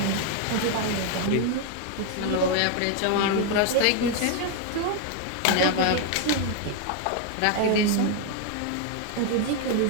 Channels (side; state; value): both; different; correlation 0.01